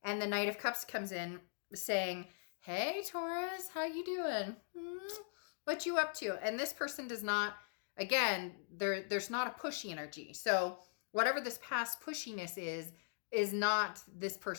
And the Knight of Cups comes in saying, hey, Taurus, how you doing? What you up to? And this person does not, again, there's not a pushy energy. So whatever this past pushiness is not this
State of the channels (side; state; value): right; silent; digital silence